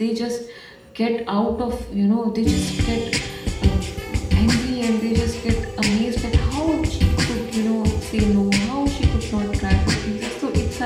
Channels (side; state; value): both; identical; correlation 1.00